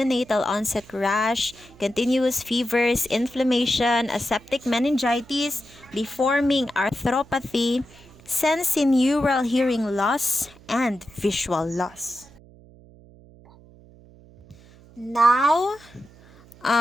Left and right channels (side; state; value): right; noise; hum, 24 dB below the sound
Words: onset rash, continuous fevers, inflammation, aseptic meningitis, deforming arthropathy, sensorineural hearing loss, and visual loss. Now,